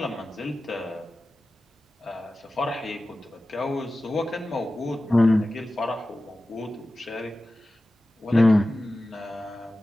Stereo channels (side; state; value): both; normal; correlation 0.95